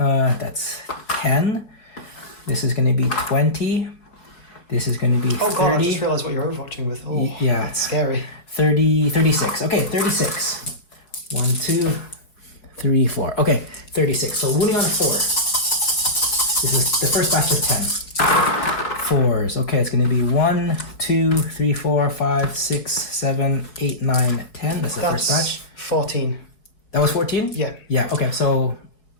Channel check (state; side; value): late; right; 4.8 ms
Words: 10. This is gonna be 20. This is going to be 30. Oh god! I just realised what you're overwatching with. Oh, yeah. that's scary. 30, 36. Okay, 36. 1, 2, 3, 4. Okay, 36. So wounding on a 4. This is the first batch of 10. 4s. Okay, it's going to be 1, 2, 3, 4, 5, 6, 7, 8, 9, 10. That's the first batch. 14. That was 14? Yeah. Yeah, okay, so